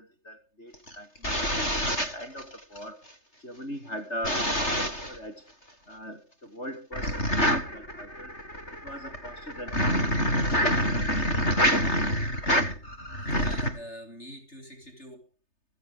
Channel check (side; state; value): right; late; 3.3 ms